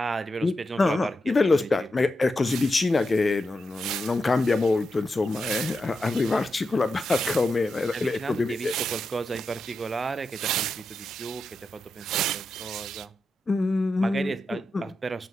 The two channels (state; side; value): normal; both; correlation 0.88